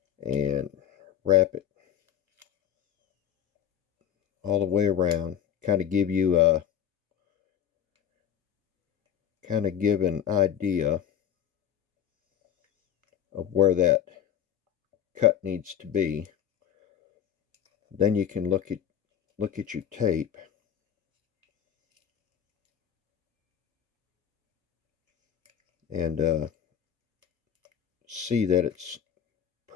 And wrap it all the way around. Kind of give you a give an idea of where that cut needs to be. Then you can look at your tape and see that it's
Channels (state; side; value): quieter; right; 9.4 dB